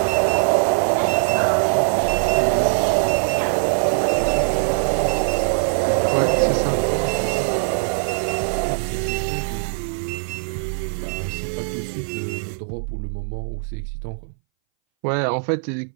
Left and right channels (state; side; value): silent; left; 62 dB below the other